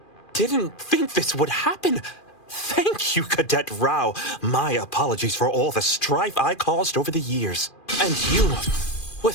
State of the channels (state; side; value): late; right; 2.4 ms